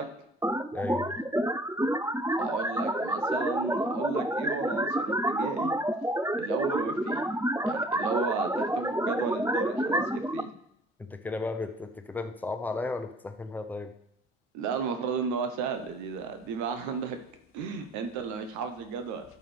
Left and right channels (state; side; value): normal; both; correlation 0.52